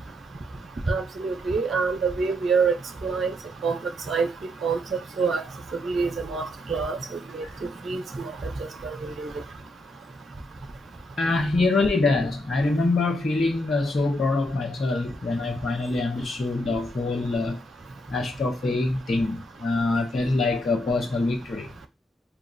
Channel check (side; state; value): both; normal; correlation 0.77